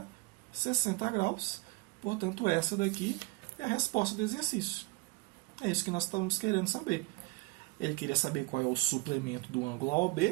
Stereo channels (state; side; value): quieter; left; 22.4 dB